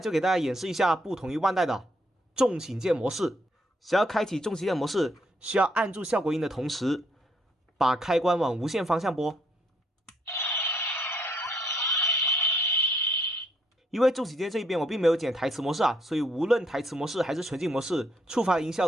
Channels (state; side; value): normal; both; correlation 0.71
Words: 给大家演示一下不同于万代的重型剑模式。想要开启重型剑模式，需要按住效果音的同时，把开关往无限方向拨。因为重型剑这一边我并没有剪台词模式啊，所以无论台词模式还是纯净模式，触发的音效